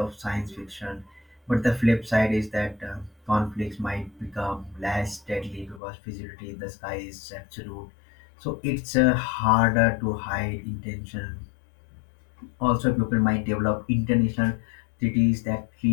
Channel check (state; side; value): drops out; right; at 5.8 s